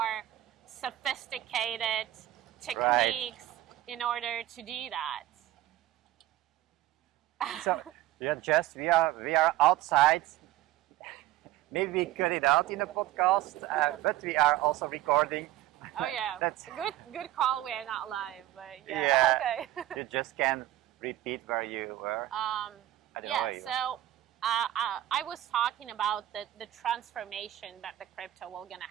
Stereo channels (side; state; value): left; quieter; 14.3 dB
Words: sophisticated techniques in order to do that. So we are outside. Maybe we cut it out in the podcast, but we are also recording. Oh yeah, That's good call. We're not live, but okay. You just can repeat where you were. So I was talking about the transformation that the crypto will gonna